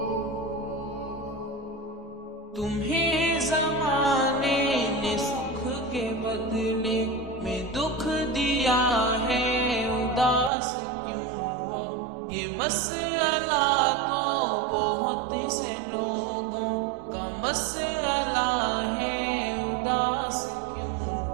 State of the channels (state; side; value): drops out; left; at 10.5 s